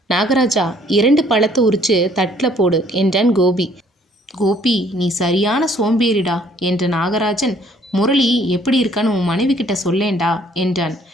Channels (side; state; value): both; normal; correlation 0.61